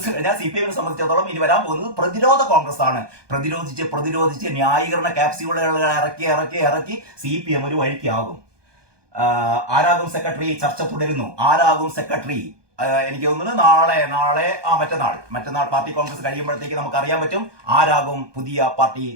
കഴിഞ്ഞാൽ CPM സംബന്ധിച്ചിടത്തോളം ഇനി വരാൻ പോകുന്നത് പ്രതിരോധ കോൺഗ്രസ് ആണ്. പ്രതിരോധിച്ച് ന്യായീകരണ ക്യാപ്സ്യൂളുകൾ ഇറക്കി CPM ഒരു വഴിക്കാകും. ആരാകും സെക്രട്ടറി? ചർച്ച തുടരുന്നു. ആരാകും സെക്രട്ടറി? എനിക്ക് തോന്നുന്നു മറ്റന്നാൾ പാർട്ടി കോൺഗ്രസ് കഴിയുമ്പോഴത്തേക്ക് നമുക്ക് അറിയാൻ പറ്റും ആരാകും പുതിയ പാർട്ടി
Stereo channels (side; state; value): left; late; 1.2 ms